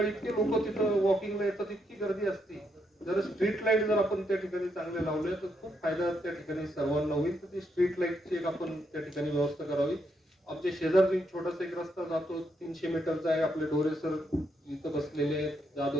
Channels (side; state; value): both; normal; correlation 0.78